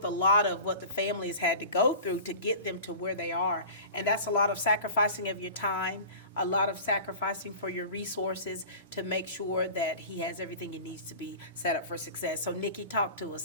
a lot of what the family has had to go through to get them to where they are. And that's a lot of sacrificing of your time, a lot of sacrificing for your resources to make sure that he has everything he needs to be set up for success. So Nikki, talk to us,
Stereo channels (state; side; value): inverted; both; correlation -0.37